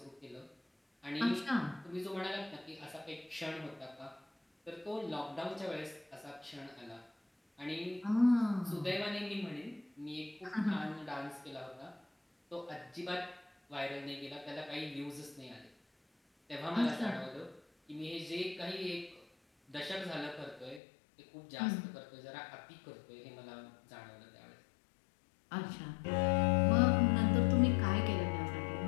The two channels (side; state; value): right; drops out; at 20.8 s